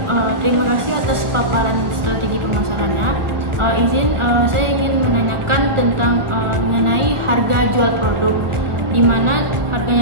terima kasih atas paparan strategi pemasarannya. Saya ingin menanyakan tentang mengenai harga jual produk, di mana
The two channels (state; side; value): late; left; 1.4 ms